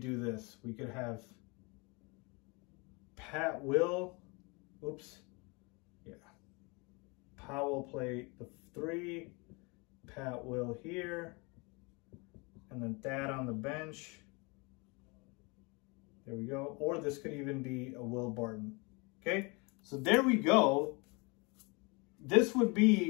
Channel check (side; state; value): right; quieter; 28.9 dB